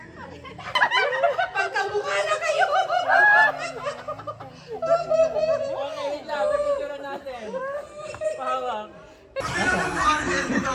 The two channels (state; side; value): identical; both; correlation 1.00